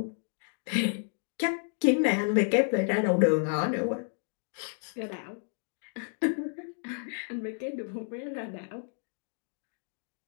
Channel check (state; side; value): silent; right; 57 dB below the other